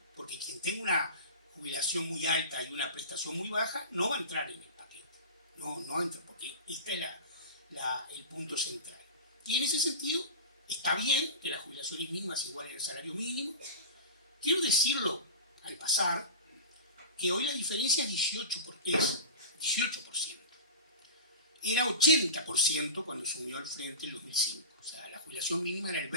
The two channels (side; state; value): both; inverted; correlation -0.30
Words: porque quien tenga una jubilación muy alta y una prestación muy baja no va a entrar en el paquete. No entra, porque este es el punto central. Y en ese sentido, está bien que las jubilaciones mínimas igualen el salario mínimo. Quiero decirlo al pasar, que hoy la diferencia es 18%. Era 80% cuando se unió al Frente en 2005. O sea, la jubilación mínima era el